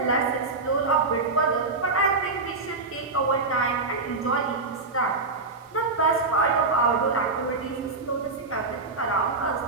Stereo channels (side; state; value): left; quieter; 3.8 dB